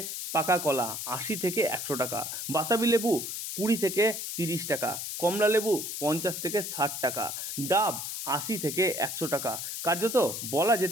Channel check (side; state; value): left; noise; hiss, 5 dB below the sound